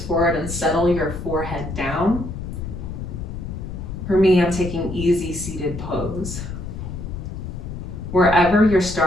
and settle your forehead down. For me, I'm taking easy seated pose. Wherever you're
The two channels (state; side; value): noise; left; rumble, 7 dB below the sound